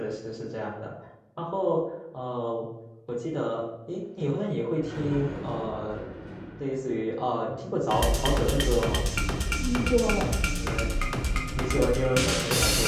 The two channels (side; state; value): both; identical; correlation 1.00